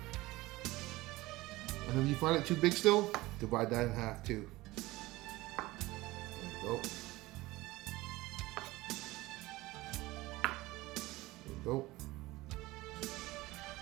And if you find it too big still, divide that in half too. There you go. There you go.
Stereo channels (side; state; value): left; quieter; 19.3 dB